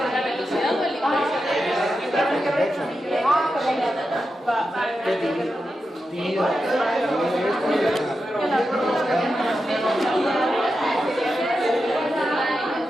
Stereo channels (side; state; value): both; normal; correlation 0.89